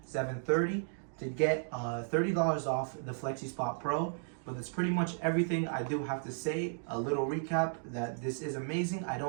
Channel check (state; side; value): silent; left; digital silence